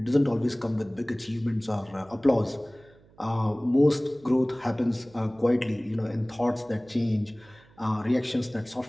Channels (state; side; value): noise; right; hum, 28 dB below the sound